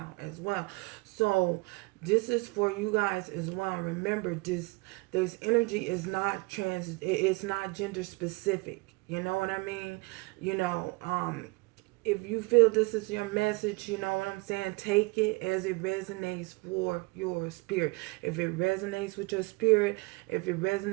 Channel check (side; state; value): left; quieter; 26.3 dB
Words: as well. So this is for you guys as well. Remember, this energy is not it's not gender specific. You know what I mean? If you feel this is your message, you know what I'm saying? Take it as it resonates for your spirit. If it resonates with your spirit, if it